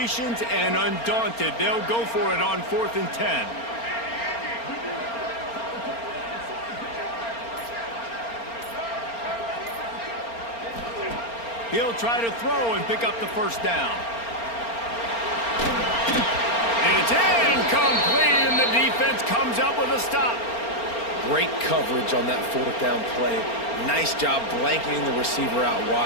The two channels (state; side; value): late; right; 4.3 ms